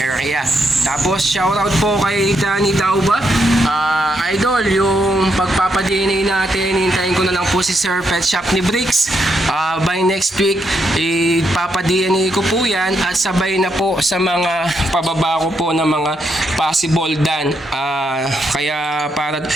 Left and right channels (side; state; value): both; normal; correlation 0.79